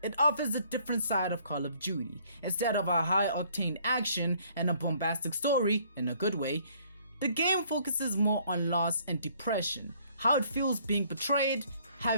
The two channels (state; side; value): inverted; both; correlation -0.62